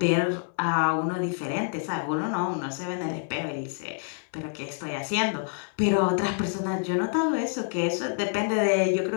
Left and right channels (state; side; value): silent; right; 60 dB below the other